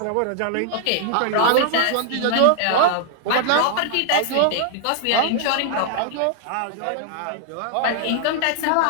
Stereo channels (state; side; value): different; both; correlation 0.00